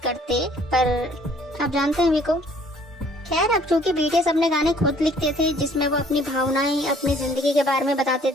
करते, पर आप जानते हैं वी को। खैर, अब चूंकि बीटीएस अपने गाने खुद लिखते थे जिसमें वो अपनी भावनाएं, अपनी जिंदगी के बारे में बताते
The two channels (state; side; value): normal; both; correlation 0.58